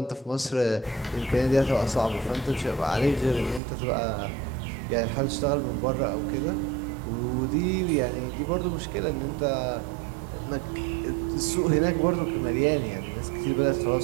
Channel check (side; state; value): left; drops out; at 3.6 s